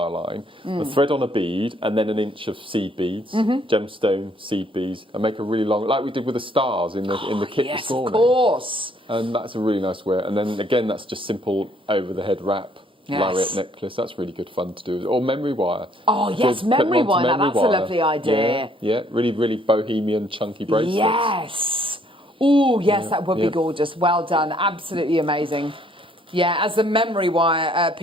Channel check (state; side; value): normal; both; correlation 0.65